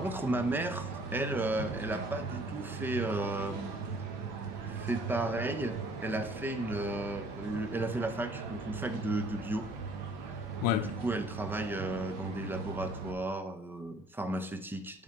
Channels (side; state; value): both; normal; correlation 0.56